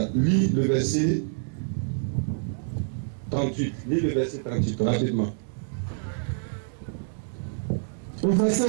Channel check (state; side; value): silent; left; digital silence